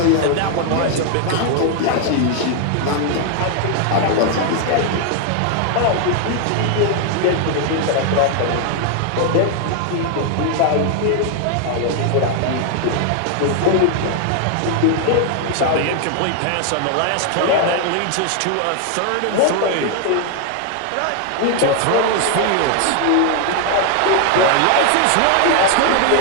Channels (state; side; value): different; both; correlation 0.00